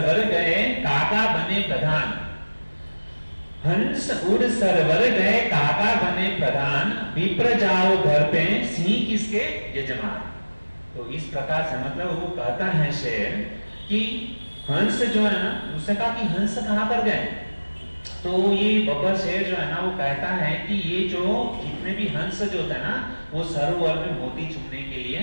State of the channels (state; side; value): inverted; both; correlation -1.00